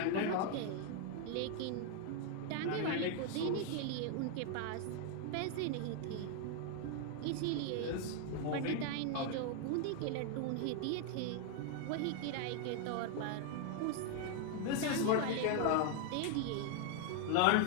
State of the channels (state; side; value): different; both; correlation 0.01